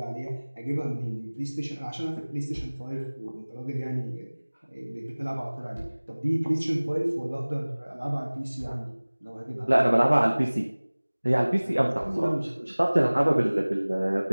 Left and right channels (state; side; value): inverted; both; correlation -1.00